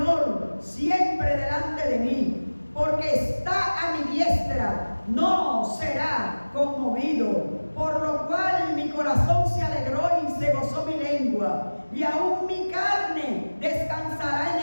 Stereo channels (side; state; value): both; inverted; correlation -1.00